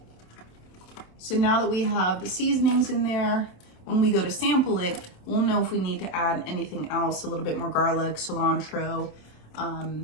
So now that we have the seasonings in there, when we go to sample it, we'll know if we need to add anything else, a little bit more garlic, cilantro,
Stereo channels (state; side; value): late; right; 27 ms